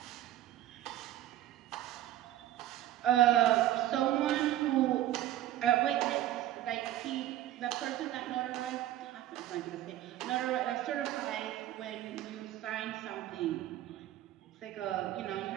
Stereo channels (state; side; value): quieter; left; 13.3 dB